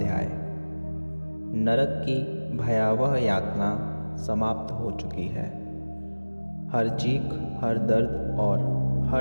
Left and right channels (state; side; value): inverted; both; correlation -1.00